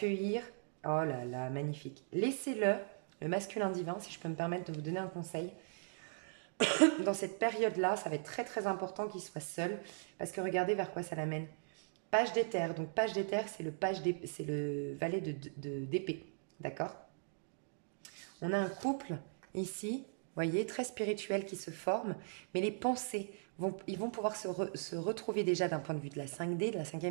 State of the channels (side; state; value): left; silent; digital silence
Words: Oh là là, magnifique. Laissez-le, le masculin divin, si je peux me permettre de vous donner un conseil. Dans cette période-là, ça va être très très important qu'il soit seul. Parce que regardez vers quoi ça l'amène. Page d'éther. Donc page d'éther, c'est le valet d'épée. D'accord? On a un couple ici, vous voyez, très spirituel qui se forme. Mais les pensées, ils vont pouvoir se retrouver déjà d'un point de vue de la 5D, de la